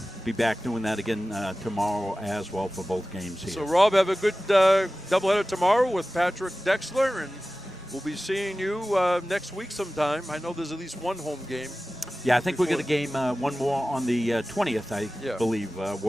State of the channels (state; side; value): normal; both; correlation 0.96